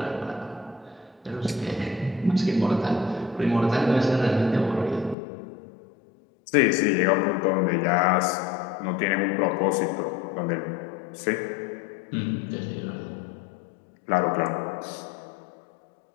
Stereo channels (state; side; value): drops out; right; at 5.2 s